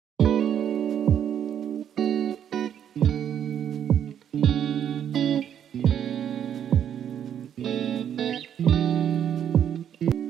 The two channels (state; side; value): quieter; left; 9.3 dB